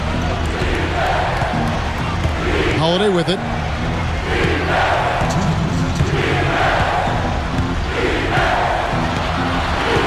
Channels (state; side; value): identical; both; correlation 1.00